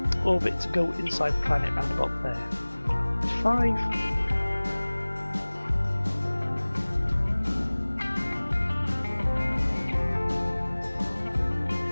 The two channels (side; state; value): both; inverted; correlation -1.00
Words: orbit to go inside the planet round about there. 5.